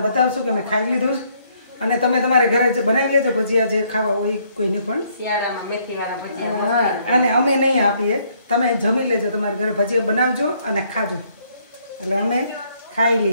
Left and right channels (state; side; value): inverted; both; correlation -0.68